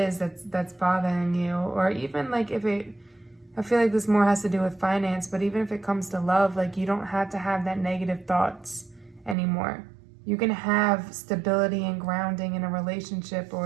that's bothering you. Or even like I feel like this more has to do with finance, but even if it comes to love, like, you don't have to have that negative thoughts anymore. You can have stability and grounding in a relationship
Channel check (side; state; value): left; drops out; at 9.3 s